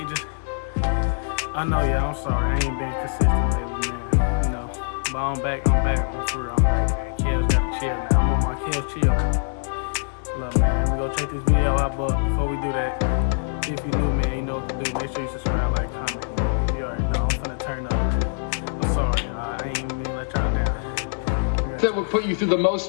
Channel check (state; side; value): silent; right; 61 dB below the other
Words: I know, yeah, I'm sorry, I ain't been consistent lately, man. You know, but I'm back, I'm for real, I'm back, man. Kellz gotta chill now. I'm on my Kellz chill. Look, man, we gonna check this video out, but before we do that, if you new, man, you know what to do. Make sure you subscribe, like, comment, man. You already know, I'm finna turn up, man. I'm sorry, y'all. I ain't even mean to let y'all down. That would put you through the